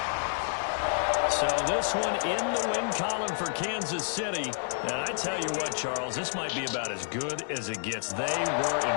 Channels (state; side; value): silent; right; digital silence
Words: So this one in the win column for Kansas City. And I tell you what, Charles, this might be about as good as it gets. They were